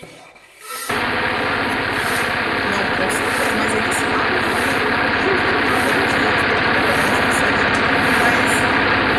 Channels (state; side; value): identical; both; correlation 1.00